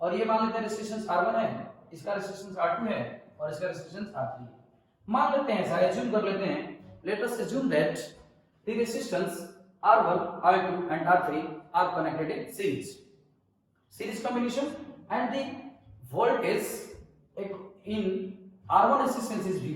ये मान लेते हैं रेसिस्टेंस R1 है, इसका रेसिस्टेंस R2 है और इसका रेसिस्टेंस R3 है। मान लेते हैं, ऐसा एज्यूम कर लेते हैं, let us assume that the resistance R1, R2 and R3 are connected in series combination and the voltage in R1 resistance is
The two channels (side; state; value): both; identical; correlation 1.00